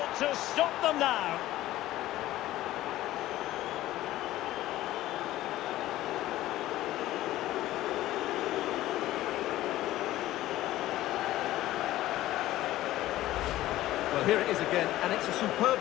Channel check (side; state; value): right; quieter; 15.3 dB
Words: to stop them now. Well, here it is again, and it's a